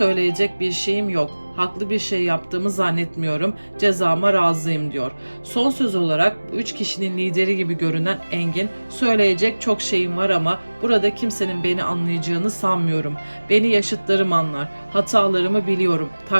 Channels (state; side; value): inverted; both; correlation -1.00